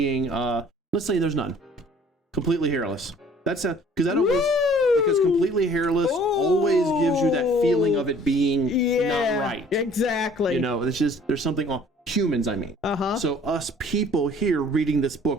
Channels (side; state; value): both; normal; correlation 0.54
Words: Let's say there's none. Completely hairless. That's because that always. Because completely hairless always gives you that feeling of it being not right. Exactly. You know, it's just there's something on humans, I mean. So us people here reading this